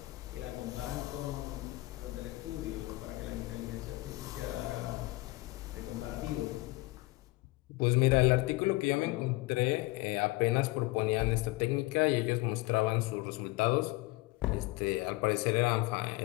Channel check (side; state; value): right; quieter; 21.4 dB